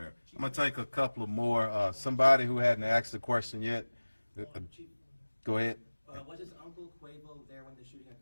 I'm going to take a couple of more. Somebody who hadn't asked the question yet. Go ahead. Was his uncle Quavo there when the shooting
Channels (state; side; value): inverted; both; correlation -1.00